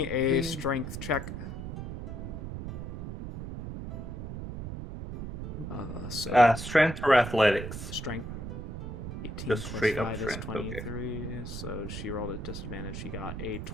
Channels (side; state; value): right; noise; rumble, 7 dB below the sound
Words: a strength check. Strength or athletics? Strength. 18 Just plus straight up 5 is strength, 23, so she rolled a disadvantage. She got a